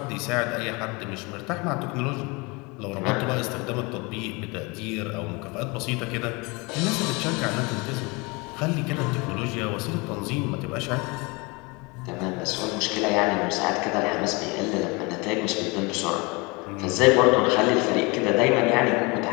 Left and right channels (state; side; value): quieter; right; 27.1 dB